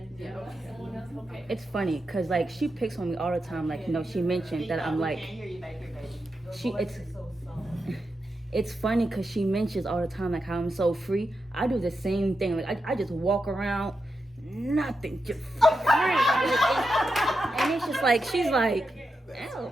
someone else, okay. It's funny because like she picks on me all the time. Like, you know, she mentioned that I'm like, it's funny because she mentions all the time like how I'm so free. I do the same thing. Like I just walk around, nothing, just free. And it's just like she's like, oh,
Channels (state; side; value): normal; both; correlation 0.87